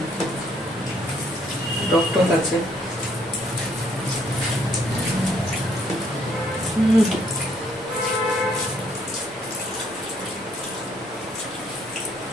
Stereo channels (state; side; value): normal; both; correlation 0.67